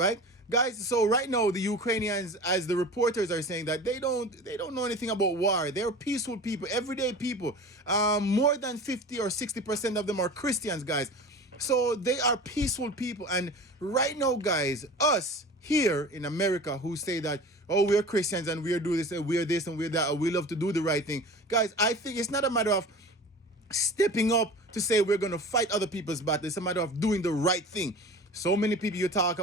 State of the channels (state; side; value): normal; both; correlation 0.37